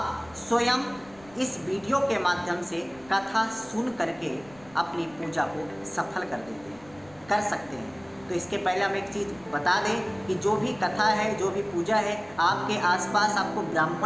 स्वयं इस वीडियो के माध्यम से कथा सुन करके अपनी पूजा को सफल कर सकते हैं। तो इसके पहले हम एक चीज़ बता दें कि जो भी कथा है, जो भी पूजा है, आपके आसपास आपको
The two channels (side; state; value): left; noise; rumble, 25 dB below the sound